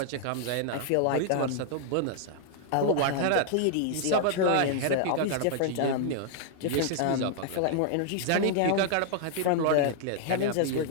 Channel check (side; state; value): both; different; correlation 0.00